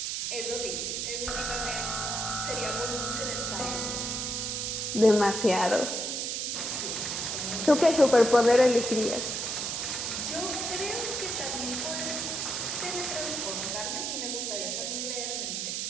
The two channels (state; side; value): noise; right; hiss, 2 dB below the sound